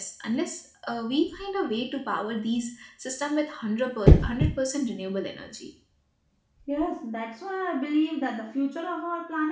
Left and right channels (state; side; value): identical; both; correlation 1.00